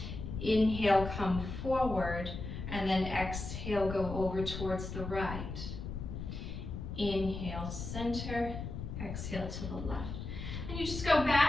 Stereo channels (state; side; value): noise; left; rumble, 7 dB below the sound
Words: Inhale, come forward, and then exhale, go over towards the right. Inhale, center, exhale to the left. And you just go